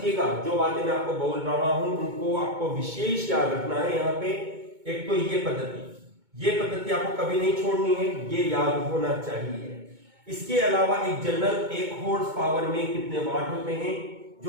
जो बातें मैं आपको बोल रहा हूं उनको आपको विशेष याद रखना है। यहाँ पे एक तो ये पद्धति आपको कभी नहीं छोड़नी है, ये याद होना चाहिए। इसके अलावा एक जनरल 1 हॉर्स पावर में कितने वाट होते हैं,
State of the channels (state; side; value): late; left; 2.2 ms